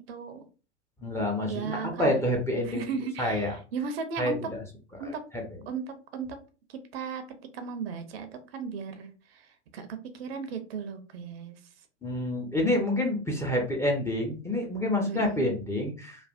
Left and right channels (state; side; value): normal; both; correlation 0.28